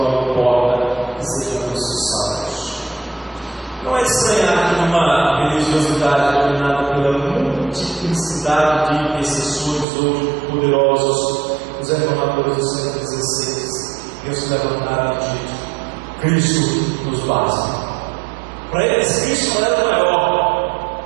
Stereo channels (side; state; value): left; drops out; at 9.9 s